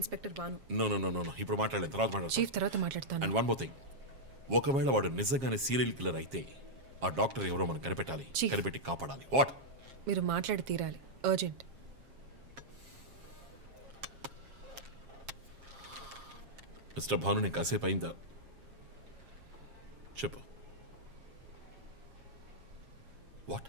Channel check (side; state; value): left; late; 7.4 ms